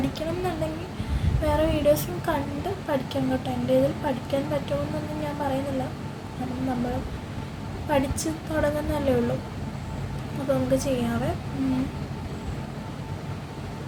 എന്നുണ്ടെങ്കിൽ വേറെ വീഡിയോസും കണ്ട് പഠിക്കാം കേട്ടോ. എൻ്റെ ഇതിൽ പഠിക്കാൻ പറ്റുമെന്നൊന്നും ഞാൻ പറയുന്നില്ല, കാരണം നമ്മൾ പഠിച്ച് തുടങ്ങുന്നതല്ലേ ഉള്ളൂ. അപ്പോൾ നമുക്ക് ചെയ്യാവേ.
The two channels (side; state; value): both; identical; correlation 1.00